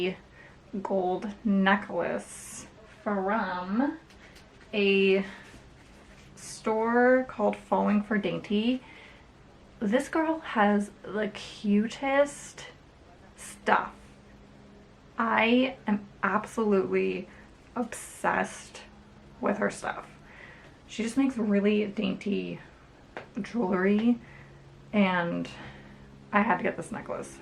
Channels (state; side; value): identical; both; correlation 1.00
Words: gold necklace from a store called Falling for Dainty. This girl has the cutest stuff. I am absolutely obsessed with her stuff. She just makes really dainty jewelry, and I had to get this necklace.